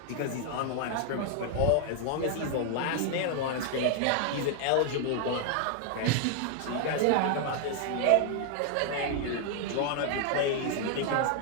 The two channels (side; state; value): both; different; correlation 0.00